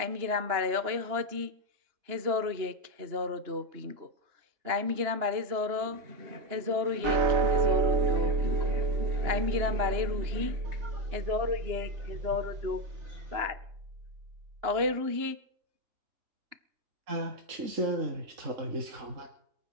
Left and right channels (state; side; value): late; left; 2.9 ms